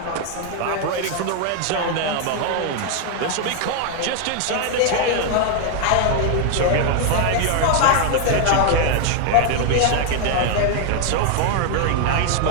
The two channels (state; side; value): different; both; correlation 0.00